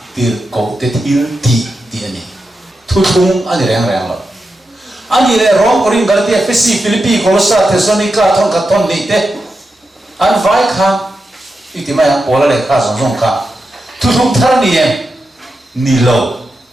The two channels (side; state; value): both; normal; correlation 0.88